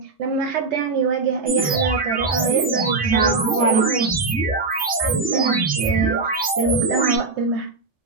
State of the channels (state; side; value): quieter; left; 3.9 dB